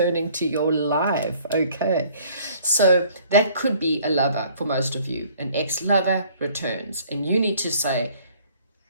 to your life. Okay, so that could be a lover for most of you. An ex-lover returns, and you need to say,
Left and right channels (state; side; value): inverted; both; correlation -0.57